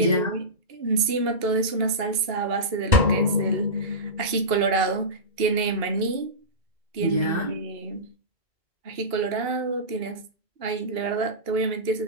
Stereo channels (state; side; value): late; left; 2.8 ms